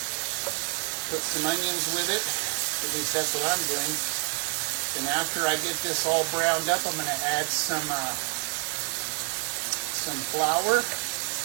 put some onions with it. At least that's what I'm doing. And after I get this all browned up, I'm going to add some flour,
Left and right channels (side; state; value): left; quieter; 36.2 dB